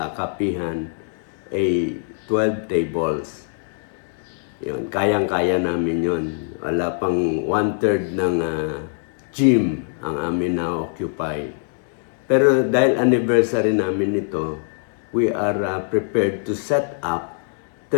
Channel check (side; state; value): right; silent; 64 dB below the other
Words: kapihan ay 12 tables. Yun, kayang-kaya namin yun. Wala pang 1/3 ng gym ang amin na-occupy. Pero dahil anniversary namin ito, we are prepared to set up